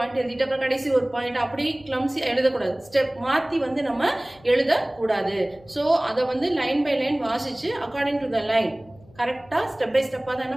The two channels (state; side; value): noise; left; hum, 26 dB below the sound